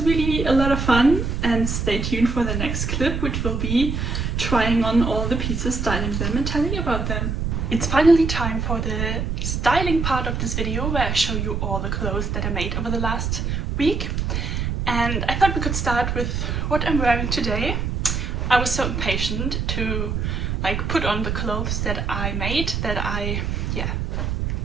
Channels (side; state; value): right; noise; rumble, 1 dB below the sound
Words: really a lot of fun, and stay tuned for the next clip, which will be trying on all the pieces, styling them and telling you about them. It's finally time for the styling part of this video, where I show you all the clothes that I made over the last week. And I thought we could start with what I'm wearing today. I was so impatient to like put on the clothes that I made, that I